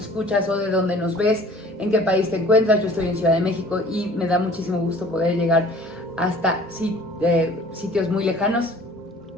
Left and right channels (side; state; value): both; normal; correlation 0.50